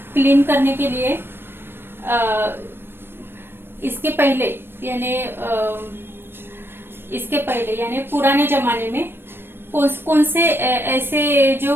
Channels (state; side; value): late; left; 0.10 ms